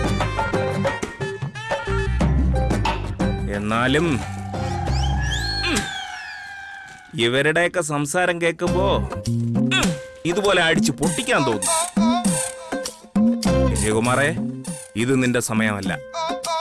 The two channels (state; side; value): identical; both; correlation 1.00